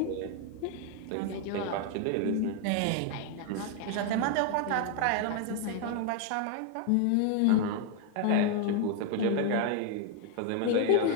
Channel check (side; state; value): both; different; correlation 0.01